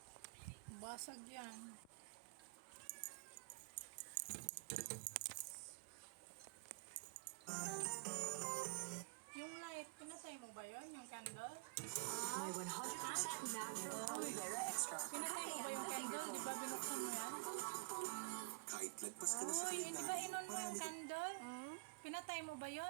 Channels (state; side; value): quieter; left; 31.2 dB